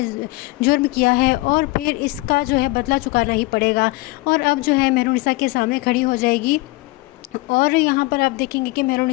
जुर्म किया है और फिर इसका जो है बदला चुकाना ही पड़ेगा। और अब जो है मेहरुनिसा के सामने खड़ी हो जाएगी और यहाँ पर आप देखेंगे कि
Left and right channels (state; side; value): quieter; right; 21.8 dB